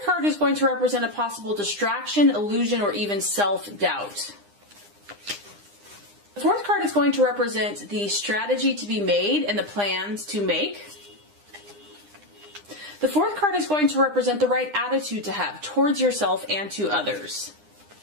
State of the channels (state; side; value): late; left; 9.8 ms